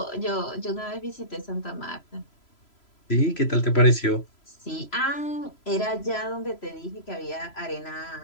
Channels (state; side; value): late; right; 3.0 ms